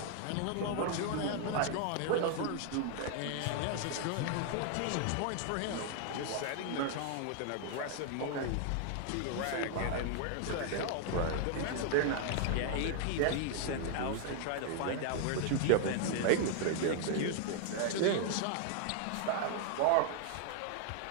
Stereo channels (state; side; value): different; both; correlation 0.00